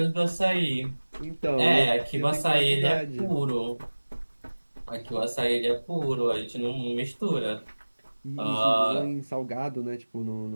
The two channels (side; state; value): both; inverted; correlation -1.00